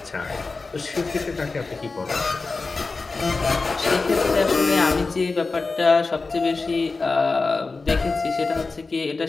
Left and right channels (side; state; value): right; quieter; 3.9 dB